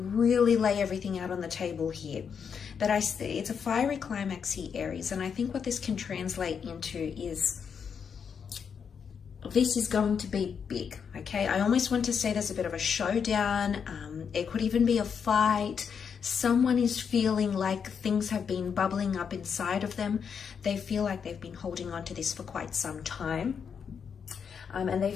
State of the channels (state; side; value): quieter; right; 6.8 dB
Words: lay everything out on the table here. But it's a fiery climax here, Aries. And I think what this can translate into is this is going to be big, okay? I almost want to say there's a bit of a showdown. It could even be a fight. Someone is feeling like things have been bubbling up inside of them. They feel like they've been holding on to this for quite some time. And they